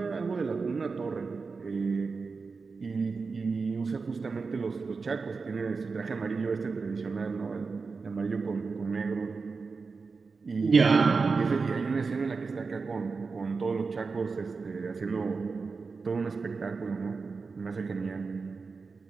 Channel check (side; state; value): left; quieter; 4.6 dB